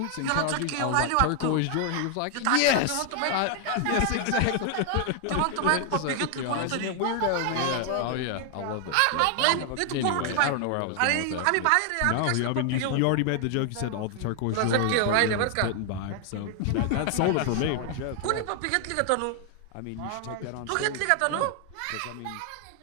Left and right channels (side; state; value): both; different; correlation 0.00